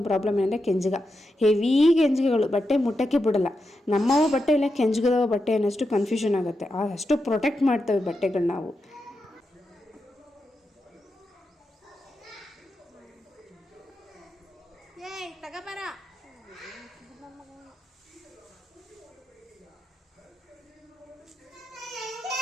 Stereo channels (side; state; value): both; normal; correlation 0.87